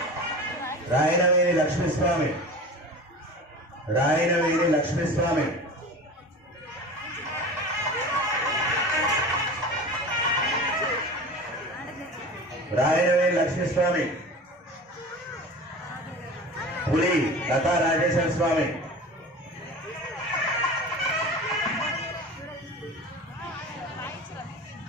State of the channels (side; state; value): both; normal; correlation 0.35